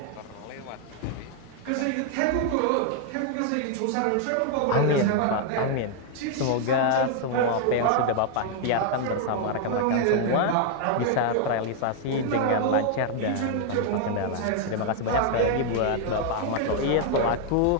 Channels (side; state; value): both; different; correlation 0.00